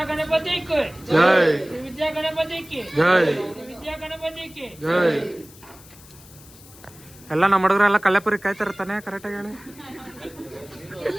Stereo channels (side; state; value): left; noise; hiss, 22 dB below the sound